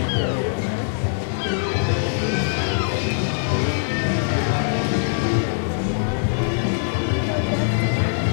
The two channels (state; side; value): silent; right; digital silence